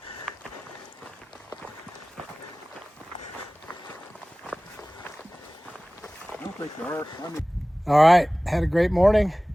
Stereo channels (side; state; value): both; normal; correlation 0.98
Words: I don't think there are. All right, had a great morning.